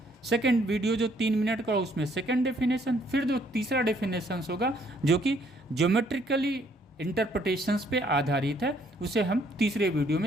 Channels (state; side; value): normal; both; correlation 0.66